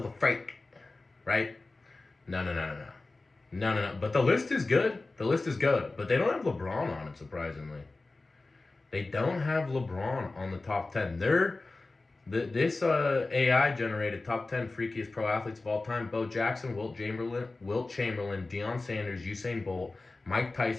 Right? No. But the list is good. But they don't have LeBron on it, surprisingly. They don't have LeBron on the top 10. This AI generated top 10 freakiest pro athletes of all time: Bo Jackson, Wilt Chamberlain, Deion Sanders, Usain Bolt, Mike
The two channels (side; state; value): right; quieter; 3.3 dB